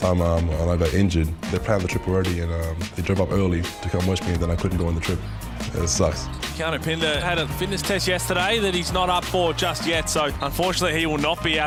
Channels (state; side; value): identical; both; correlation 1.00